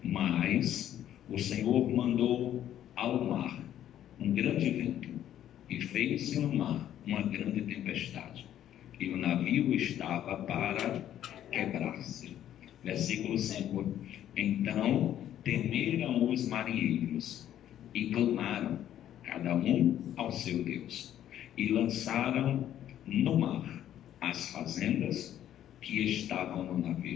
Mas o Senhor mandou ao mar um grande vento, e fez-se no mar uma grande tempestade, e o navio estava para quebrar-se. Versículo 5. Então temeram os marinheiros e clamaram, cada um ao seu Deus, e lançaram no mar as fazendas que estavam no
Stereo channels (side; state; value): right; quieter; 11.3 dB